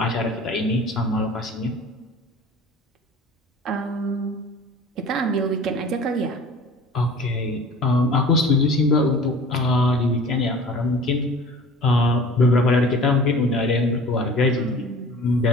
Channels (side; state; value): both; normal; correlation 0.43